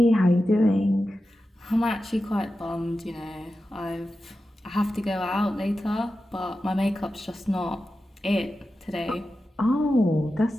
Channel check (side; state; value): both; normal; correlation 0.92